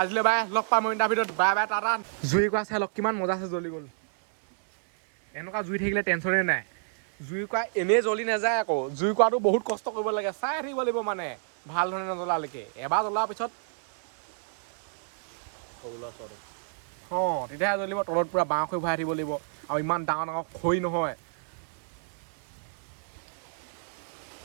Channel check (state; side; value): silent; left; digital silence